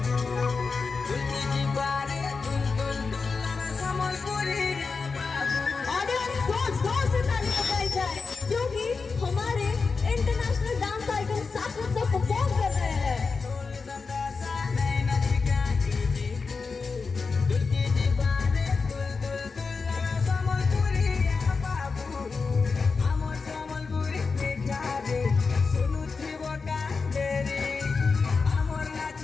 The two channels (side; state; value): right; quieter; 4.7 dB